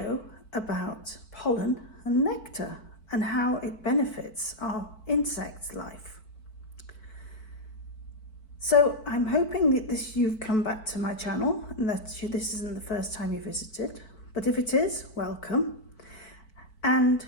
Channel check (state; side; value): late; right; 4.5 ms